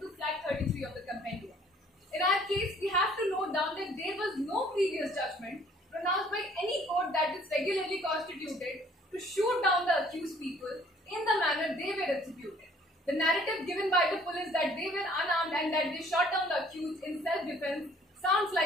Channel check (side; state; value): both; normal; correlation 0.57